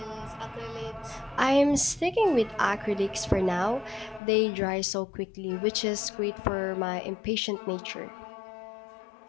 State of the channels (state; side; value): drops out; right; at 4.2 s